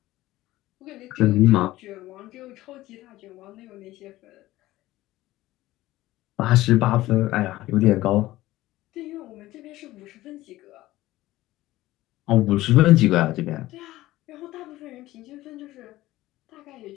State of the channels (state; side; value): quieter; right; 16.7 dB